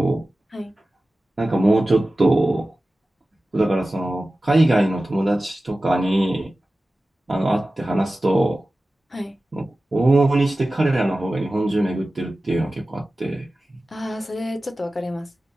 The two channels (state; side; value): normal; both; correlation 0.95